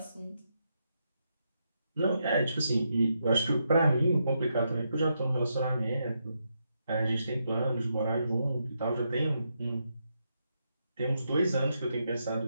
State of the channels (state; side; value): inverted; both; correlation -0.81